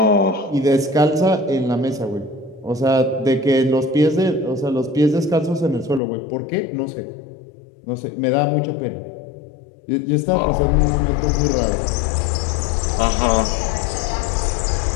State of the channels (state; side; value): drops out; right; at 6.0 s